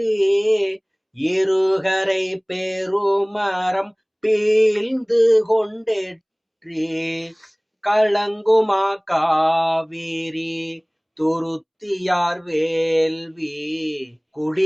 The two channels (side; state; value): both; identical; correlation 1.00